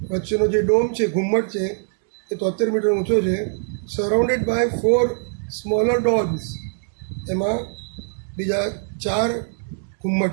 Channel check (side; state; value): left; silent; digital silence